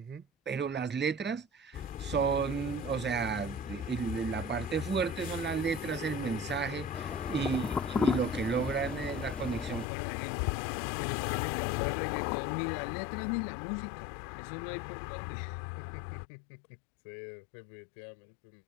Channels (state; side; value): drops out; right; at 9.9 s